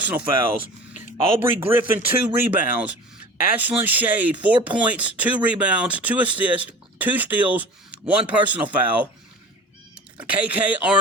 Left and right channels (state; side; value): normal; both; correlation 0.39